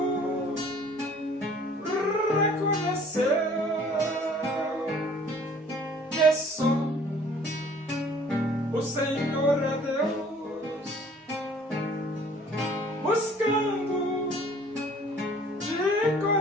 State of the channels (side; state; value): both; normal; correlation 0.54